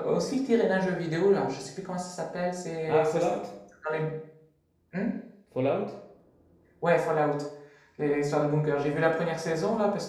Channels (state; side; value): identical; both; correlation 1.00